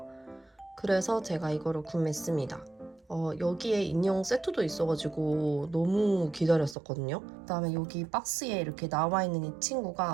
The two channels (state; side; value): drops out; left; at 6.8 s